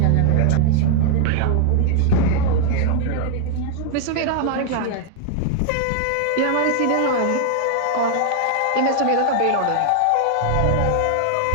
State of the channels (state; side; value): different; both; correlation 0.00